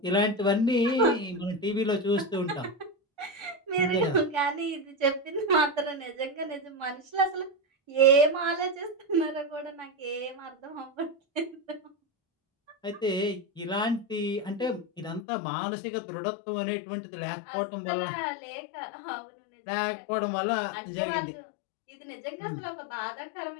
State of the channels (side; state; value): right; drops out; at 15.2 s